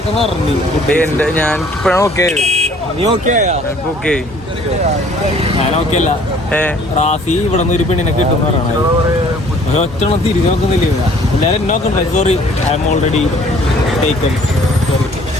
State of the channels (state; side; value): normal; both; correlation 0.56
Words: പറഞ്ഞു. എന്റെ ഞാൻ ഇപ്പഴാണ് ഓക്കെ. നീ ഓക്കെ ഓക്കെ? ഞാൻ ഓക്കെ അല്ല. റാസി ഇവിടെ നിന്ന് ഒരു പെണ്ണിനെ കിട്ടും പറയണത്. ഒറ്റണം തിരിഞ്ഞു നോക്കുന്നില്ല. എല്ലാവരും എന്നെ നോക്കണ്ടേ? Sorry, I M already taken. Sorry.